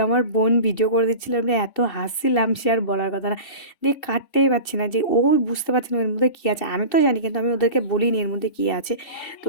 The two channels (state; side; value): late; right; 2.7 ms